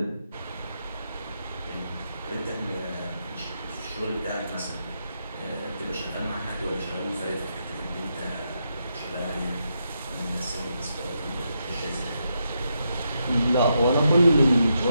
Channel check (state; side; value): inverted; both; correlation -0.82